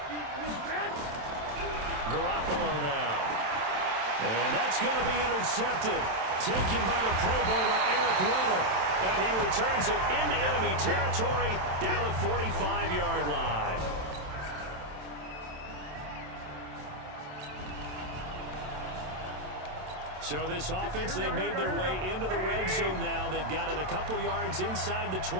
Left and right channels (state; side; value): late; left; 27 ms